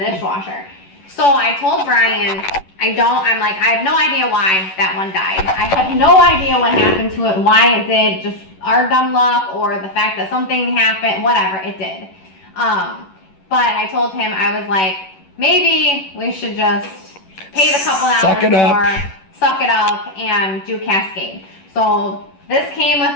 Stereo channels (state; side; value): late; right; 11 ms